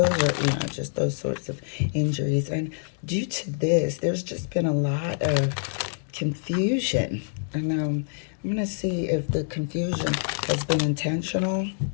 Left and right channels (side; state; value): right; silent; digital silence